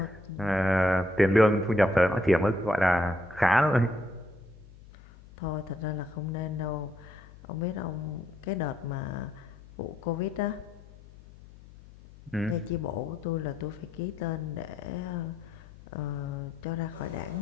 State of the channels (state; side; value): noise; left; hum, 21 dB below the sound